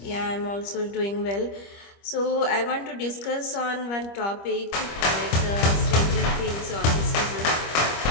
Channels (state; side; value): late; right; 25 ms